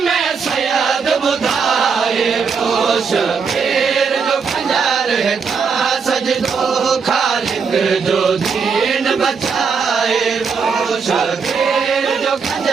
में सैयद बुधाए वो शबीर जो खंजर था सजदो खालिक जो दीन बचाए वो शबीर जो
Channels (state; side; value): quieter; left; 5.7 dB